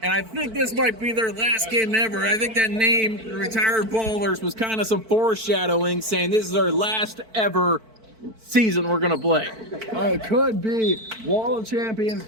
And I think this might be their last game ever. I think that name, Retired Ballers, was kind of some foreshadowing, saying this is our last ever season we're going to play. It could be Wall of Champions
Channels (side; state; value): left; late; 4.5 ms